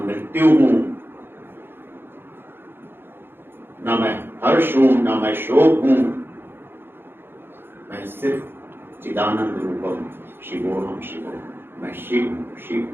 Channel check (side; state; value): left; late; 0.10 ms